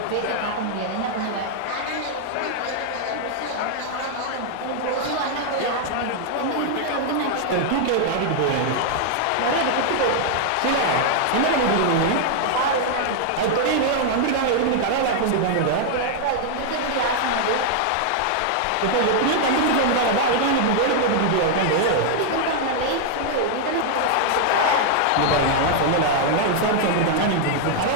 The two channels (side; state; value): both; different; correlation 0.00